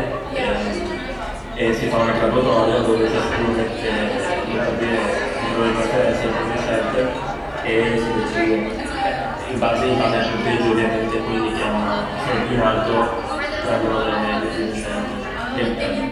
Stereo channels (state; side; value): identical; both; correlation 1.00